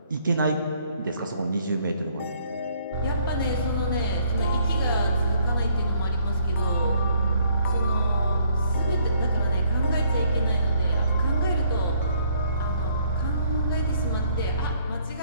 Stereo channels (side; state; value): both; inverted; correlation -0.65